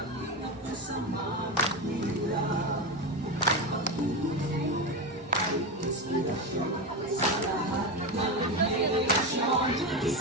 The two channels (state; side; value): normal; both; correlation 0.16